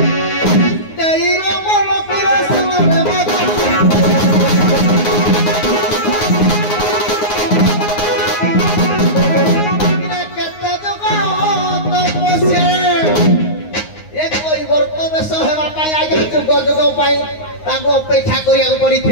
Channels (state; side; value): late; right; 9.6 ms